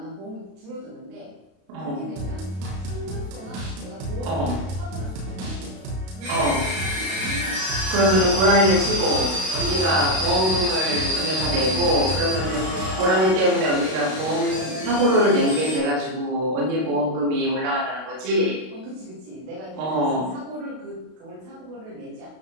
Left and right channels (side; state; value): left; late; 32 ms